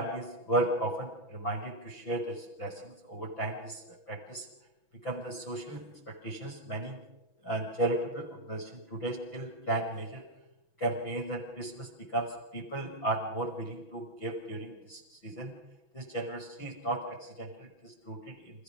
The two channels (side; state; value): right; late; 6.1 ms